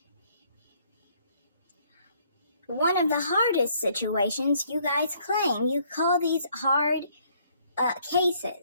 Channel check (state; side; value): inverted; both; correlation -0.65